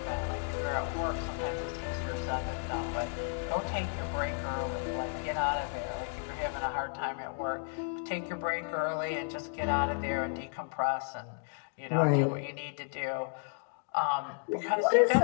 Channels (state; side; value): silent; right; digital silence